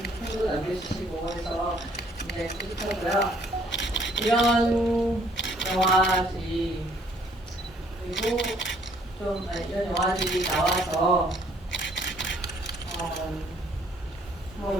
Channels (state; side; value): normal; both; correlation 0.62